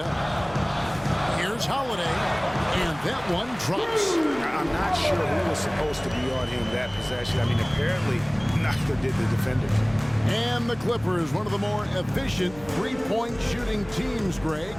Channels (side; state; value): left; noise; hum, 20 dB below the sound